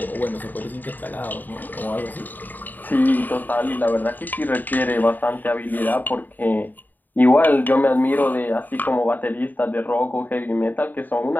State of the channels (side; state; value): right; late; 0.087 ms